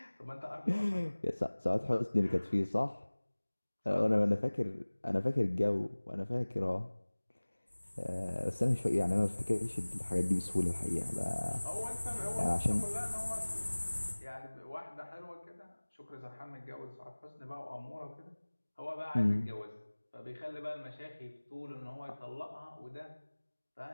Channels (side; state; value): both; inverted; correlation -1.00